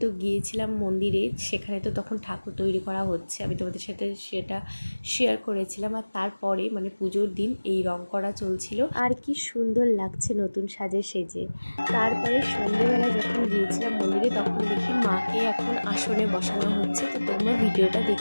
তো গিয়েছিলাম মন্দিরে, সেখানে তো তখন ঠাকুর তৈরি করা হচ্ছে, আমি তোমাদের সাথে সেটা শেয়ার করেছিলাম। আর তারপরে মানে পুজোর দিন এই রং করা চলছিল, আর কি সুন্দর লাগছে নতুন সাজে সেজে। তারপরে সন্ধ্যেবেলা যখন গিয়েছিলাম মন্দিরে, তখন দেখি মাকে এখন আসনে বসানো হচ্ছে। তো তোমরা ভিডিওটা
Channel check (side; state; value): both; inverted; correlation -1.00